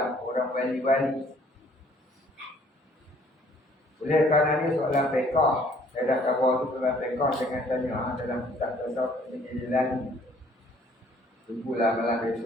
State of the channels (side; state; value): both; normal; correlation 0.60